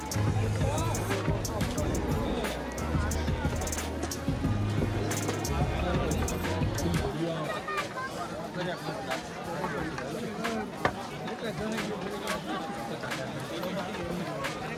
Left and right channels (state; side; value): identical; both; correlation 1.00